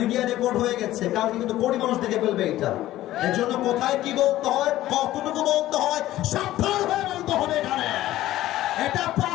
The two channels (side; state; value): right; quieter; 14.8 dB